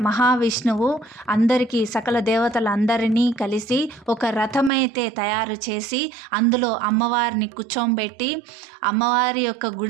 మహావిష్ణువు అందరికీ సకల దేవతలందరినీ కలిసి ఒక రథమైతే తయారు చేసి అందులో అమ్మవారిని కూర్చోబెట్టి అమ్మవారి యొక్క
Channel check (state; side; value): drops out; left; at 4.7 s